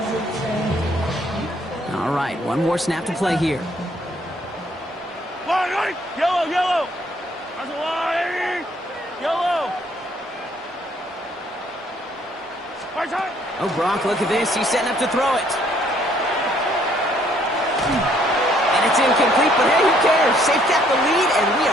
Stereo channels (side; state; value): both; normal; correlation 0.65